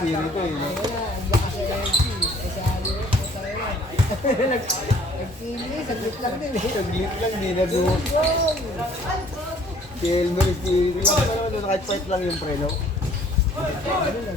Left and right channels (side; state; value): both; normal; correlation 0.57